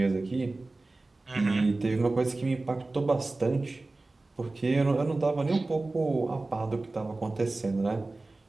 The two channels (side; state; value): left; quieter; 3.2 dB